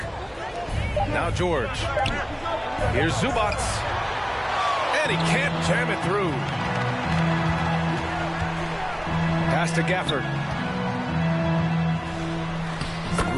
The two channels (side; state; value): both; identical; correlation 1.00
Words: Now George. Here's Zubac. And he can't jam it through. Pass to Gafford.